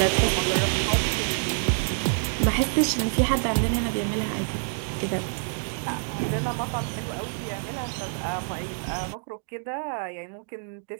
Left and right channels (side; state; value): left; silent; digital silence